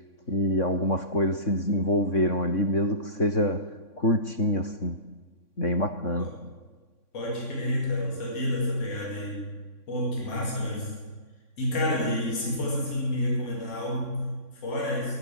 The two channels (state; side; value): late; right; 3.6 ms